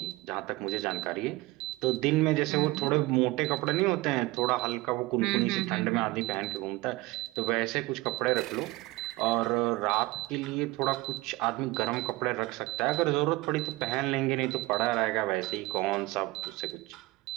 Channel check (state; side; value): quieter; left; 20.6 dB